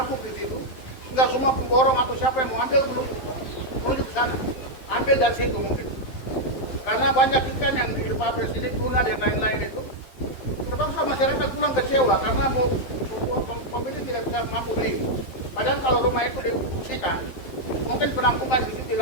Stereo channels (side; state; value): right; late; 12 ms